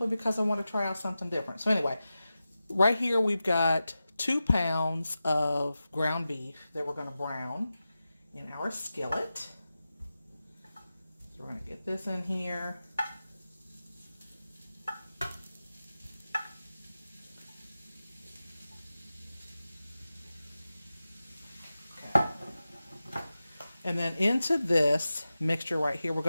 because I want to try out something different. So anyway, right here we've got 2 pounds of ground beef that we're going to brown in our skillet. So we're going to get this in here. And then into this mixture right here, we're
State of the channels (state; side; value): inverted; both; correlation -0.93